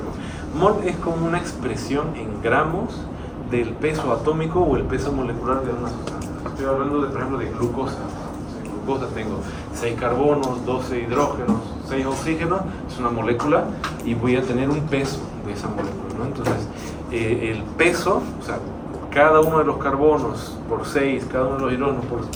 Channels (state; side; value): identical; both; correlation 1.00